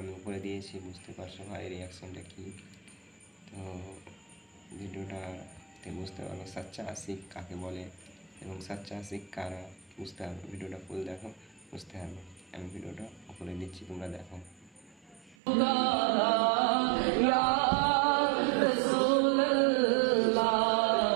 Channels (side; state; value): left; drops out; at 15.4 s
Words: আমি উপরে দিয়েছি, বুঝতে পারছো ভাই রিয়াকশনটা কী। তো ভিডিওটাতে বুঝতে পারবো সাচ্চা আশিক কাকে বলে এবং সাচ্চা আশিক কারা, বুঝতে পারবো। ভিডিওটা ফুল দেখো, বুঝতে পারবো। আমি ভিডিওটা উপরে দিচ্ছি, তোমরা দেখো।